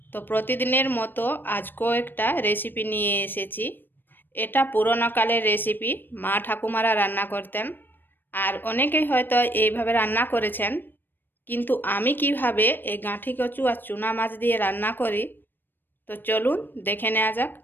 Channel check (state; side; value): late; right; 0.094 ms